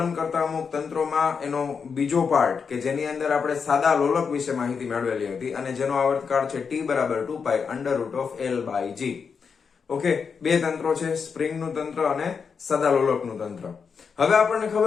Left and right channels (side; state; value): right; quieter; 5.9 dB